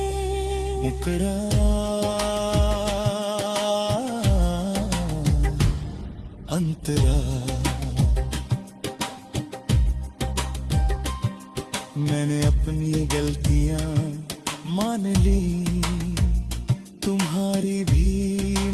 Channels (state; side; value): identical; both; correlation 1.00